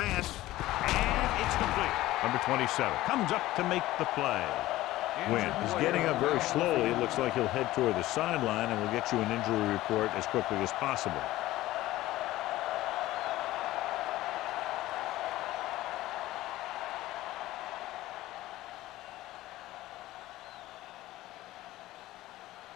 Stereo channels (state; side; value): quieter; right; 16.4 dB